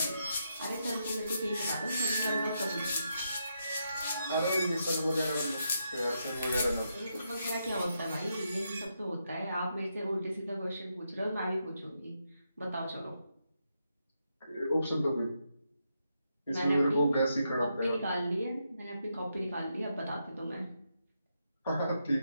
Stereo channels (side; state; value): both; inverted; correlation -0.82